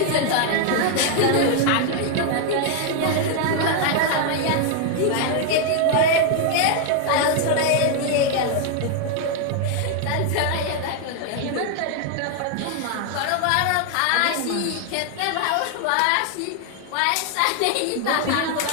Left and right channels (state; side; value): different; both; correlation 0.00